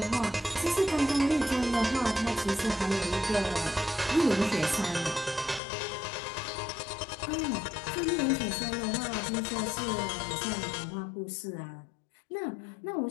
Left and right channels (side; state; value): right; drops out; at 5.6 s